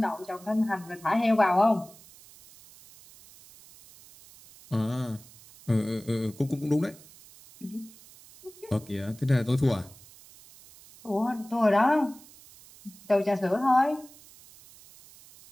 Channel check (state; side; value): noise; right; hiss, 22 dB below the sound